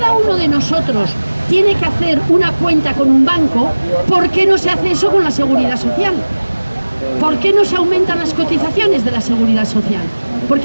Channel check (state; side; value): inverted; both; correlation -1.00